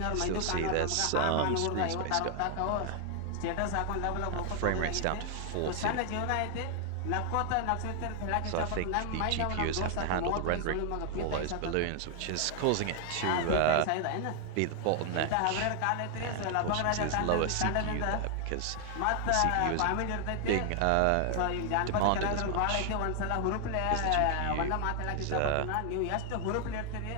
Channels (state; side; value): different; both; correlation 0.00